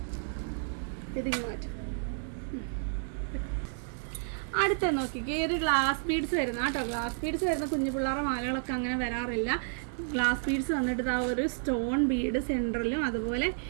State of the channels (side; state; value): left; silent; digital silence